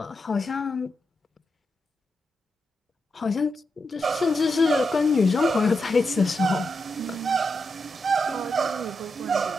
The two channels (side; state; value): both; normal; correlation 0.85